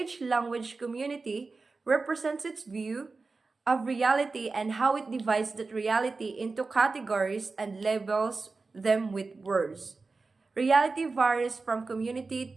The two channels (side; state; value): left; quieter; 4.0 dB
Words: language community represents its view of reality and how it divides that reality into categories and labels them with words. Reality varies from community